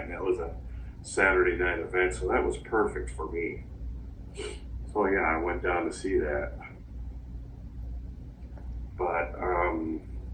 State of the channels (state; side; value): identical; both; correlation 1.00